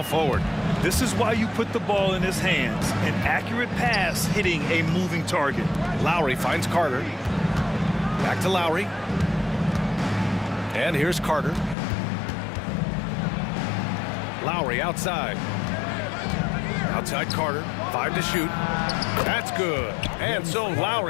forward. This is why you put the ball in his hands. An accurate pass hitting a moving target. Lowry finds Carter. Back to Lowry. And here's Carter. Lowry outside. Outside Carter. 5 to shoot. That's good. And so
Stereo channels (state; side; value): drops out; right; at 11.8 s